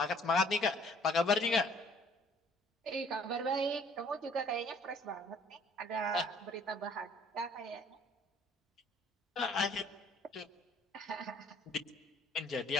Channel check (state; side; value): normal; both; correlation 0.58